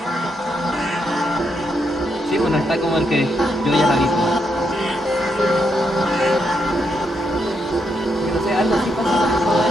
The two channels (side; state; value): both; normal; correlation 0.79